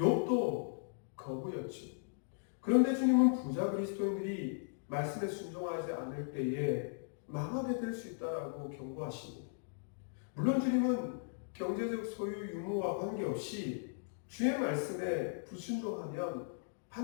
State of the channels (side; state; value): right; silent; digital silence